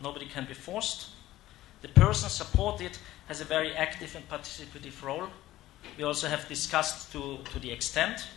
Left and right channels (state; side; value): quieter; right; 15.4 dB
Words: nobody can be forced. The person supported has a very active and participative role. We also have discussed to the extent.